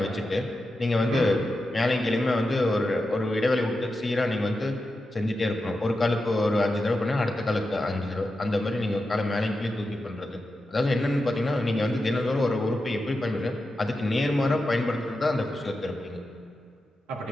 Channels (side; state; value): both; normal; correlation 0.90